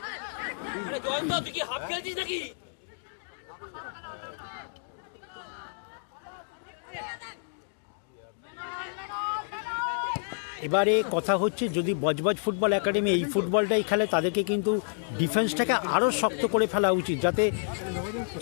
এবারে কথা হচ্ছে যদি বজবজ ফুটবল একাডেমি এই ফুটবলটাই খেলে তাদেরকে কিন্তু ডিফেন্সটাকে আরও শক্ত করে ফেলা উচিত, যাতে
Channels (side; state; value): right; silent; digital silence